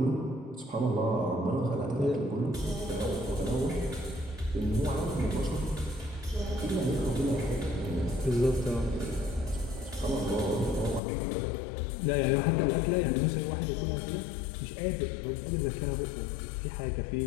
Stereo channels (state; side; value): drops out; right; at 11.0 s